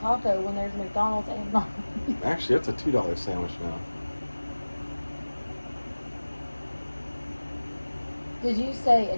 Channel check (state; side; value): inverted; both; correlation -1.00